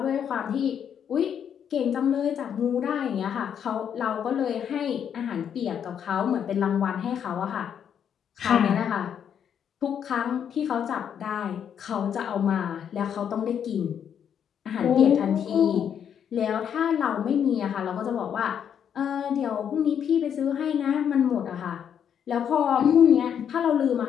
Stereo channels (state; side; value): quieter; right; 8.5 dB